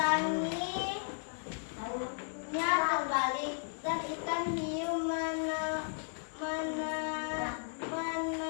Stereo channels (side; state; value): right; silent; digital silence